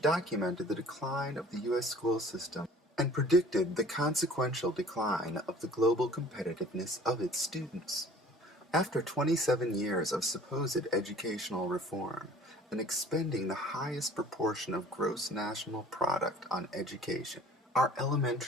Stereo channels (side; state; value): both; normal; correlation 0.49